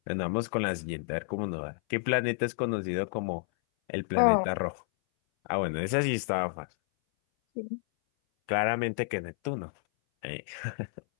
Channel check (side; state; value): right; silent; 58 dB below the other